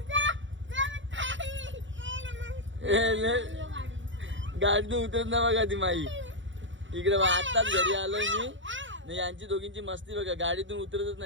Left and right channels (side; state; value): left; late; 0.55 ms